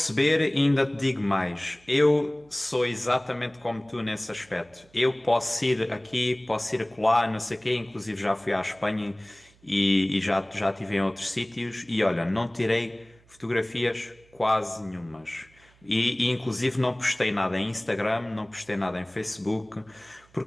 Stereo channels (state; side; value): noise; right; hum, 30 dB below the sound